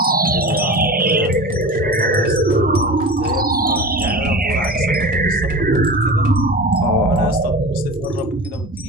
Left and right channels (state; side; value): normal; both; correlation 0.33